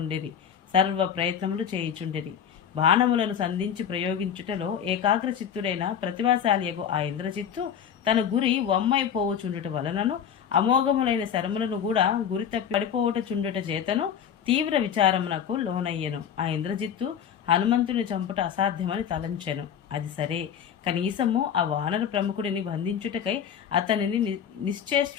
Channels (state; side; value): quieter; right; 8.4 dB